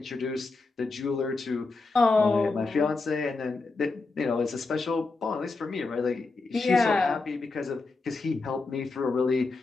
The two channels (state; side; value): quieter; right; 3.7 dB